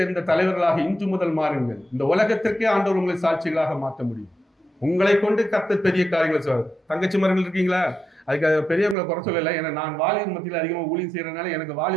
தலைவர்களாக இன்று முதல் மாறுங்கள். இந்த உலகத்திற்கே ஆண்டவர் உங்களை சாட்சிகளாக மாற்ற முடியும். உங்களை கொண்டு கர்த்தர் பெரிய காரியங்களை சொல்றாரு. தங்கச்சி மரங்கள் இருக்கீங்களா? அதுக்கு பெரியவங்களை குறை சொல்லலை. ஏன்னா நான் வாலிபர் மத்தியில் அதிகமாக ஊழியம் செய்யறதுனால எனக்கு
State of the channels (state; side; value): drops out; left; at 9.0 s